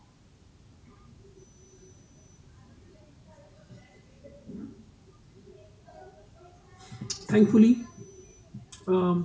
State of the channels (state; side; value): identical; both; correlation 1.00